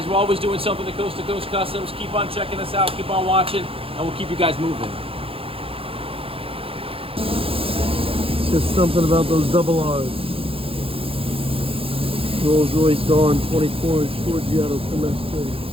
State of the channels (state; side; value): late; left; 0.27 ms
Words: we're always doing something to Coast Customs. Keep on checking us out. Keep on watching, and we'll keep you guys moving. Just something about those double R's. Rolls Royce Dawn 24-inch Forgiato Trimestre.